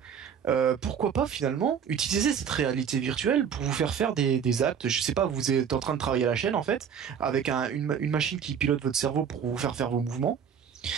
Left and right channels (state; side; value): quieter; left; 7.6 dB